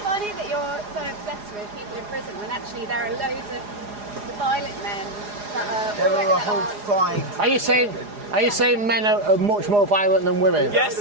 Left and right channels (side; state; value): left; late; 4.9 ms